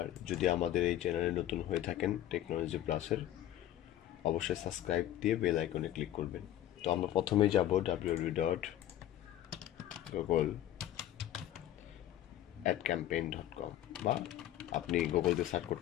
যদি আমাদের এই চ্যানেলে নতুন হয়ে থাকেন টেকনোলজি প্লাসের, অবশ্যই সাবস্ক্রাইব দিয়ে বেল আইকনে ক্লিক করবেন। তো আমরা প্রথমেই যাব www.google-adcampaign.com বা আপনি গুগলতে সার্চ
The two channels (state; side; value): quieter; right; 12.6 dB